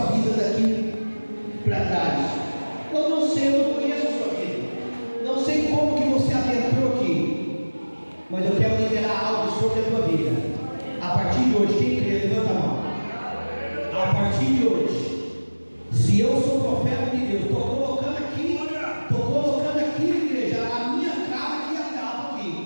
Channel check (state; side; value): inverted; both; correlation -1.00